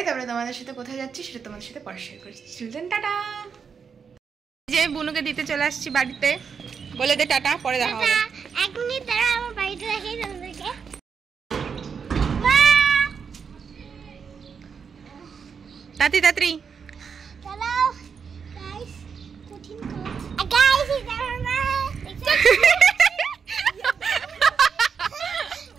তারপরে তোমাদের সাথে কোথায় যাচ্ছি সেটা তোমাদের সাথে পরে শেয়ার করছি। Children tata. যে বুনুকে দিতে চলে আসছি বাড়িতে, বলে দে টাটা, পরে দেখা হবে। এক মিনিট দাঁড়া, আমার বাড়িতে দেখাই তোমাদেরকে। তাড়াতাড়ি তাড়াতাড়ি চলো গাইস, কঠিন কাজ। গাইস এটা আমার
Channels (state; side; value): quieter; left; 6.3 dB